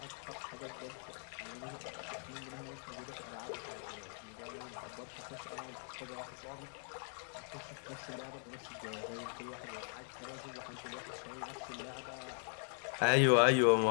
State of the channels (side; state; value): right; silent; 51 dB below the other